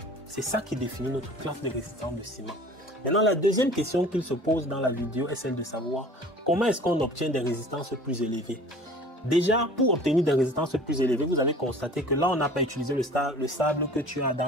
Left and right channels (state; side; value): normal; both; correlation 0.45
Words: C'est ça qui définit notre classe de résistance de ciment. Maintenant, la deuxième question qu'il se pose dans la vidéo est celle de savoir comment est-ce qu'on obtient des résistances plus élevées. Déjà, pour obtenir des résistances plus élevées, vous avez constaté que là, on n'a pas utilisé le sable que tu as